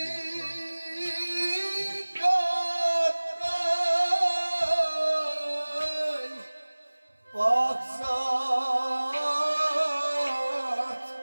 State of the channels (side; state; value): both; inverted; correlation -1.00